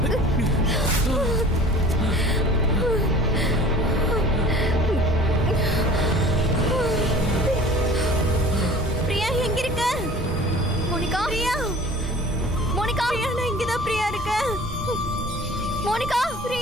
பிரியா எங்க இருக்க? மோனிகா, பிரியா, மோனிகா, பிரியா, நான் இங்கதான் பிரியா இருக்கேன். மோனிகா,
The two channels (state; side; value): normal; both; correlation 0.45